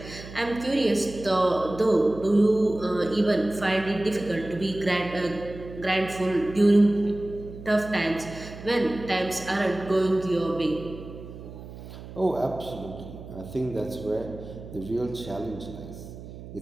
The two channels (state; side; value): noise; right; hum, 14 dB below the sound